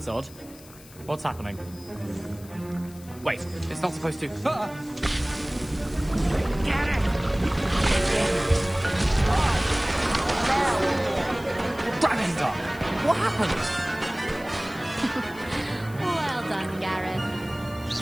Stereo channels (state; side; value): noise; left; hiss, 21 dB below the sound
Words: odd. What's happening? Wait, it's not supposed to... Ah! Get it! Dragonstar! What happened? Well done, Gareth.